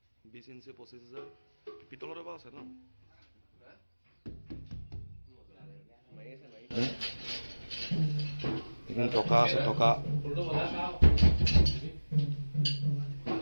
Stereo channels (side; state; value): both; inverted; correlation -1.00